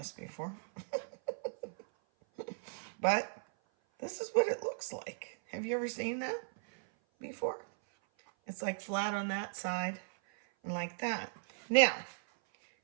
before. But this is what it looks like. Have you ever seen that? before? It's like flat on that side and like that. Now,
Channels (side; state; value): left; silent; 53 dB below the other